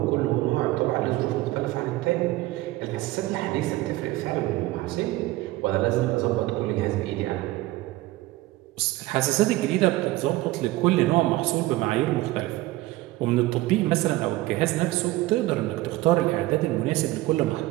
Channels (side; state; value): left; quieter; 18.0 dB